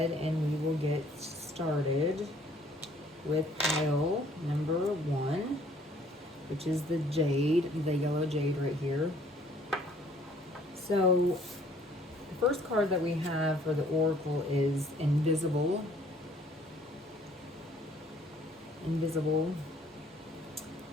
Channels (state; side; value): normal; both; correlation 0.59